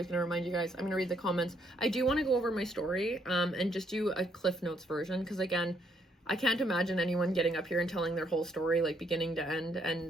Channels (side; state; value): both; normal; correlation 0.71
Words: going to remind you guys. I'm going to read the comments. I do want to go over my story and just do a Cliff Notes version, because again, I can't imagine anyone getting up here and telling their whole story, like beginning to end,